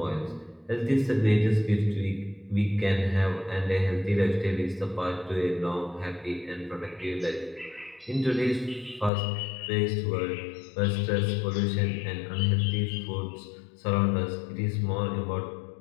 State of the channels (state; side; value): drops out; right; at 9.1 s